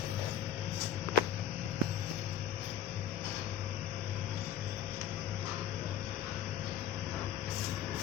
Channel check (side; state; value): right; quieter; 8.9 dB